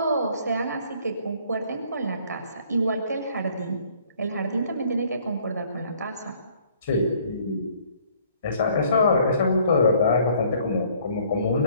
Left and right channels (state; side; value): inverted; both; correlation -0.60